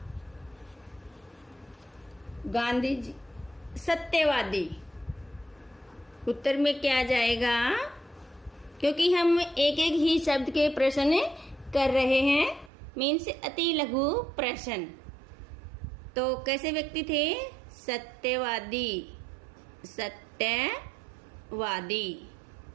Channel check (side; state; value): left; drops out; at 12.7 s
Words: गांधी जी सत्यवादी। उत्तर में क्या जाएगा? क्योंकि हम एक एक ही शब्द के प्रश्न कर रहे हैं, मीन्स अति लघु प्रश्न। तो कैसे व्यक्ति थे? सत्यवादी, सत्यवादी।